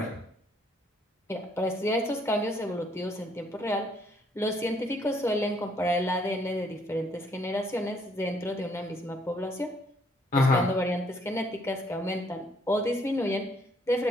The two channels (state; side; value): normal; both; correlation 0.67